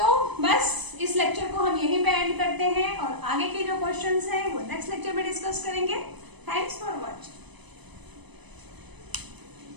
बस इस लेक्चर को हम यहीं पे एंड करते हैं और आगे के जो क्वेश्चंस हैं वो नेक्स्ट लेक्चर में डिस्कस करेंगे। Thanks for watching.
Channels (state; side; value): late; left; 0.99 ms